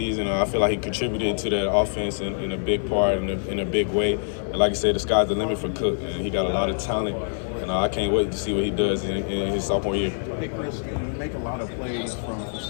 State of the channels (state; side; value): silent; right; digital silence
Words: I feel like he contributed to that offense in a big part, in a big way. And like I said, the sky's the limit for Cook, and he got a lot of talent. And I can't wait to see what he does in his sophomore year. Hey, Chris, you make a lot of plays from